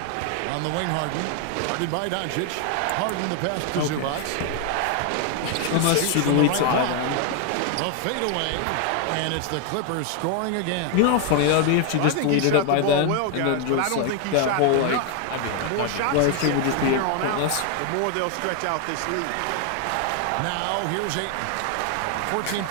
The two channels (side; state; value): both; different; correlation 0.01